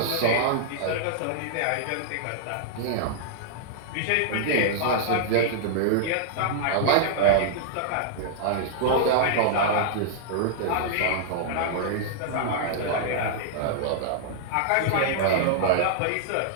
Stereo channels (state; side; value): different; both; correlation -0.01